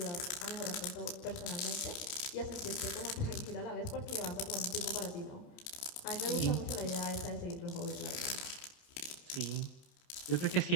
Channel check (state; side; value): late; right; 29 ms